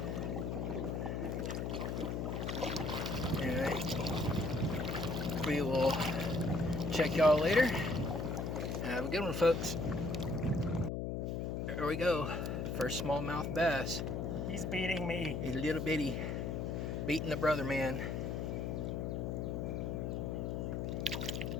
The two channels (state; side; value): noise; left; hum, 2 dB below the sound